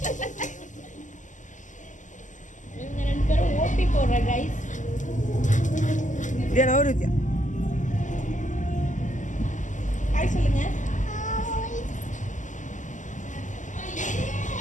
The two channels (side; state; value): right; late; 0.37 ms